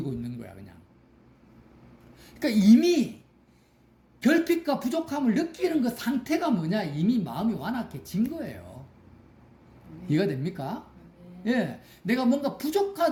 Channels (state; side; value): identical; both; correlation 1.00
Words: 있는 거야, 그냥. 그러니까 이미 결핍과 부족함을 느끼는 그 상태가 뭐냐? 이미 마음이 완악해진 거예요. 이해가 됩니까? 예, 내가 뭔가